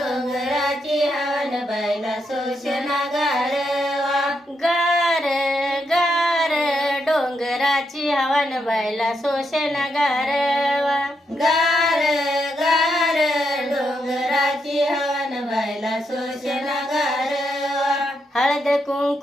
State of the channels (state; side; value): normal; both; correlation 0.81